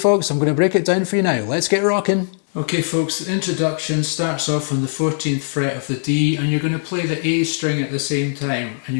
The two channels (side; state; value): right; silent; digital silence